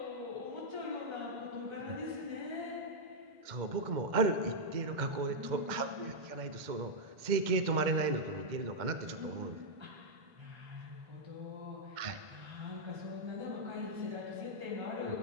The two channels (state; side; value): late; left; 2.1 ms